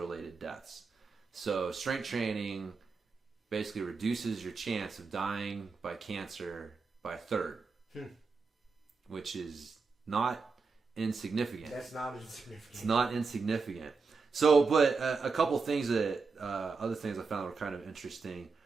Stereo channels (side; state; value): left; quieter; 4.6 dB